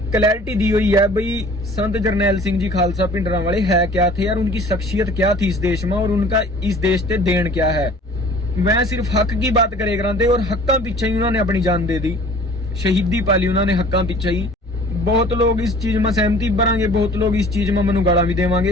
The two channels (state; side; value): normal; both; correlation 0.48